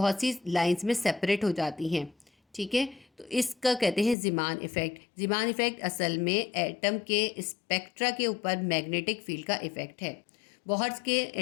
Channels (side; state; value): right; drops out; at 4.2 s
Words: सी लाइंस में सेपरेट हो जाती हैं। ठीक है, तो इसका कहते हैं ज़ीमान इफेक्ट। ज़ीमान इफेक्ट असल में एटम के स्पेक्ट्रा के ऊपर मैग्नेटिक फील्ड का इफेक्ट है। बोहर्स के